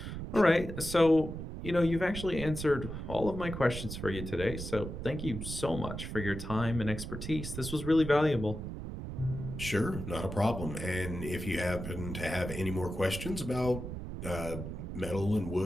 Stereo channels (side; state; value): right; noise; rumble, 7 dB below the sound